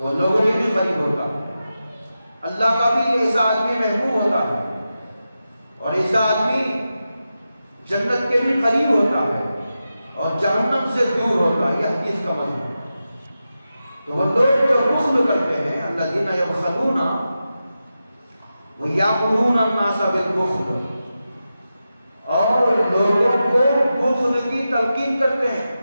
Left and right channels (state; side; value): inverted; both; correlation -0.91